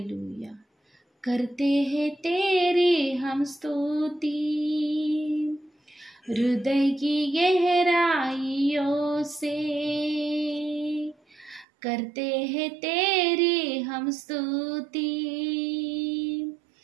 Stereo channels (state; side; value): drops out; left; at 11.7 s